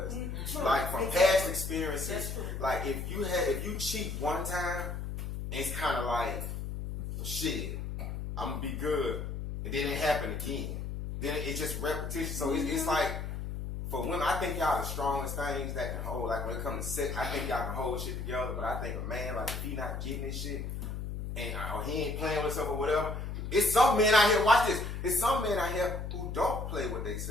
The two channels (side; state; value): left; noise; hum, 5 dB below the sound